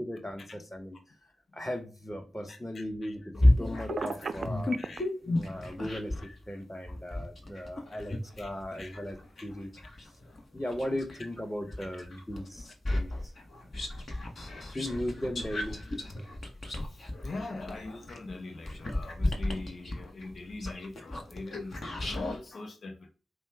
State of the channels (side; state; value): both; normal; correlation 0.96